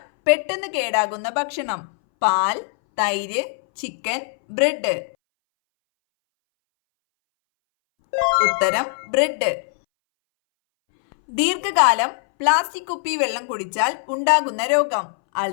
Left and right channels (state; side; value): silent; right; 63 dB below the other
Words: പെട്ടെന്ന് കേടാകുന്ന ഭക്ഷണം: പാൽ, തൈര്, ചിക്കൻ, ബ്രെഡ്. ഉത്തരം ബ്രെഡ്. ദീർഘകാലം പ്ലാസ്റ്റിക് കുപ്പി വെള്ളം കുടിച്ചാൽ ഉണ്ടാകുന്ന രോഗം: